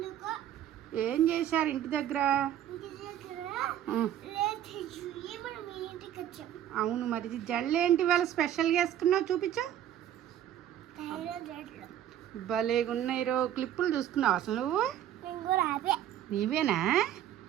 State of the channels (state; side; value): quieter; left; 11.1 dB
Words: ఏం చేశారు ఇంటి దగ్గర? అవును, మరి జల్లేంటి వాళ్ళ స్పెషల్గా వేసుకున్నావు, చూపించు. భలేగా ఉన్నాయి రో. క్లిప్పులు చూసుకున్నావు అసలు నువ్వు? నీవేనా?